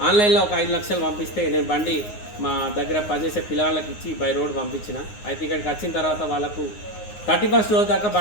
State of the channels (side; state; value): right; late; 9.6 ms